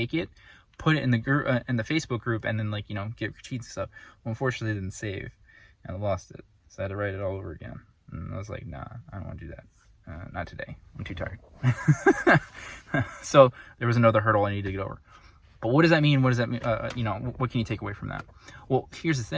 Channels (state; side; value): identical; both; correlation 1.00